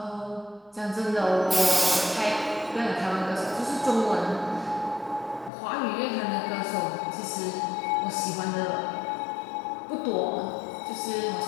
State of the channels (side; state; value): right; drops out; at 5.5 s